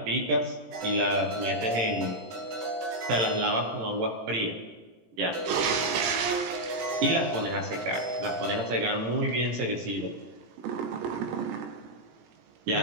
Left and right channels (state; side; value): late; left; 17 ms